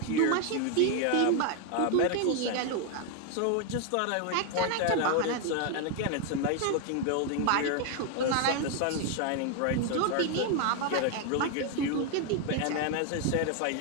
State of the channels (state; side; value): different; both; correlation 0.01